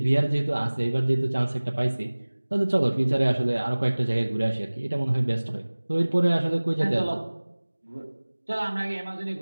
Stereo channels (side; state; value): both; inverted; correlation -1.00